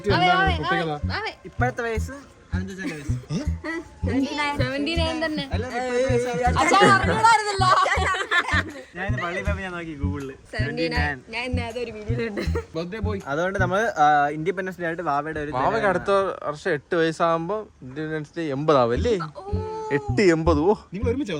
എന്താണ്? ഇപ്പോഴത്തെ വയസ്സ് അതുകൊണ്ട് നമ്മള് ഇൻഡിപെൻഡൻസ് ഡേ ആയിട്ട് വാവയുടെ ഒരു വാവയ്ക്ക് അടുത്ത വർഷം 8 വയസ്സാകുമ്പോ ഇൻഡിപെൻഡൻസ് ഡേ 80 ആവും അല്ലേ? 8-80. ഓ നിങ്ങൾ ഒരുമിച്ച്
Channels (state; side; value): identical; both; correlation 1.00